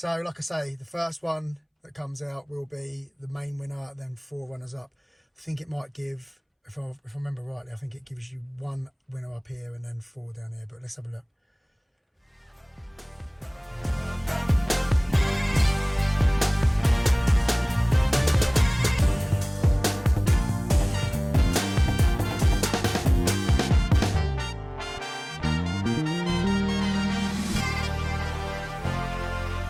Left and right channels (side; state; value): both; identical; correlation 1.00